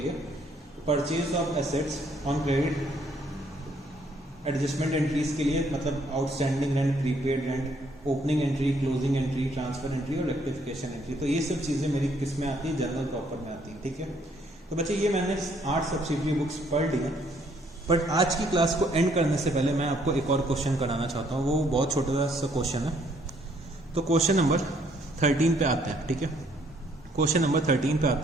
purchase of assets on credit, adjustment entries के लिए मतलब outstanding rent, prepaid rent, opening entry, closing entry, transfer entry और रेक्टिफिकेशन एंट्री। तो ये सब चीजें मेरी किस में आती है, जनरल प्रॉपर में आती है। ठीक है, तो बच्चे ये मैंने 8 सब्सिडरी बुक्स पढ़ ली हैं। बट आज की क्लास को एंड करने से पहले मैं आपको एक और क्वेश्चन कराना चाहता हूँ, वो बहुत छोटा सा क्वेश्चन है। तो क्वेश्चन नंबर 13 पे आते हैं। ठीक है, क्वेश्चन नंबर 13 पे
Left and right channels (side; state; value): both; normal; correlation 0.66